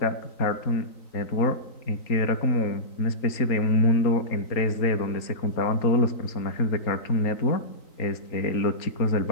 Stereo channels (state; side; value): late; right; 3.9 ms